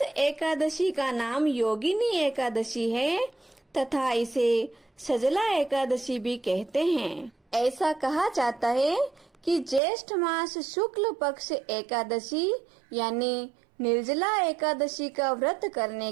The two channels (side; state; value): left; drops out; at 9.8 s